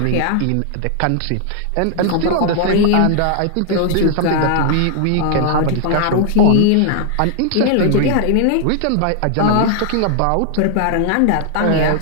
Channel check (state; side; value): different; both; correlation 0.00